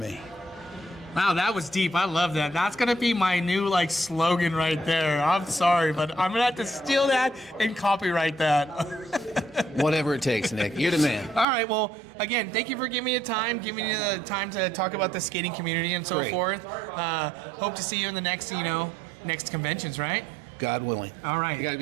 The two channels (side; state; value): left; drops out; at 11.5 s